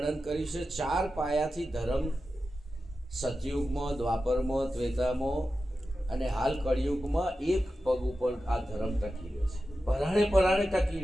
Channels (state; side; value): normal; both; correlation 0.92